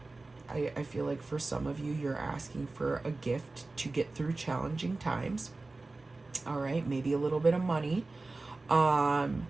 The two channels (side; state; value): left; quieter; 3.3 dB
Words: I feel like for some of you, you're asking for a gift to get through challenging times. All right, maybe a little bit of money,